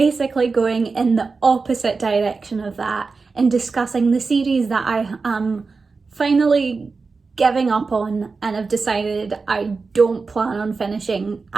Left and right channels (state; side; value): quieter; left; 4.4 dB